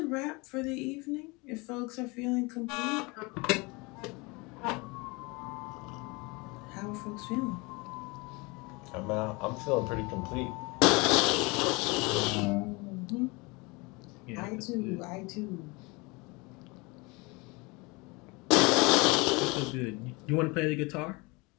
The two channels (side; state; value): right; quieter; 26.5 dB